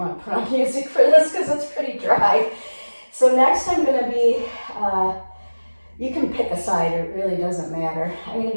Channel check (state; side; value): inverted; both; correlation -1.00